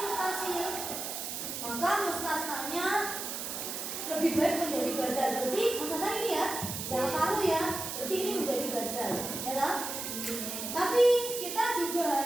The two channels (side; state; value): right; noise; hiss, 5 dB below the sound